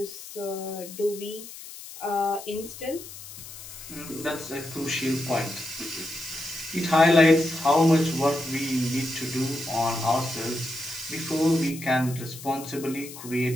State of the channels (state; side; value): noise; left; hiss, 14 dB below the sound